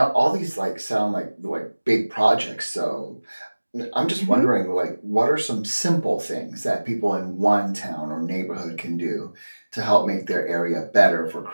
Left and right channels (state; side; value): inverted; both; correlation -1.00